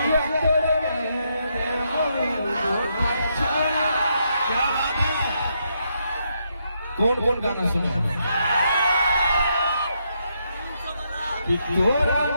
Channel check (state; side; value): inverted; both; correlation -0.78